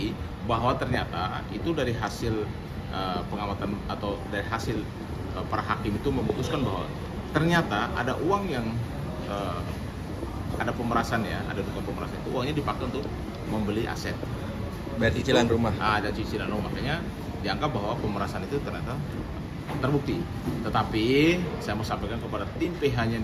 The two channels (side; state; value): both; identical; correlation 1.00